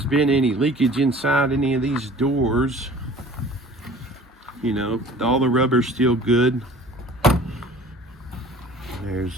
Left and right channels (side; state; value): both; normal; correlation 0.47